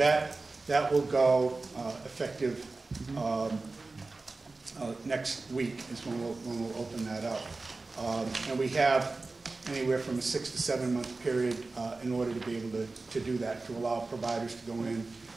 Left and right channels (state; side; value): quieter; left; 3.6 dB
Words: will go effective next week is when we'll open that up. And we have anywhere from a 6 to 7 month period in order to be able to do that, to allow providers to go in